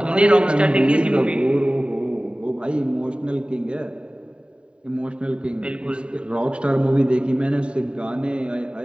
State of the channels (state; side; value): late; left; 0.053 ms